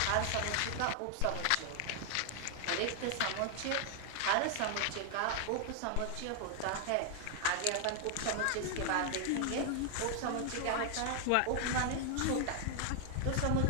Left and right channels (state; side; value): different; both; correlation 0.00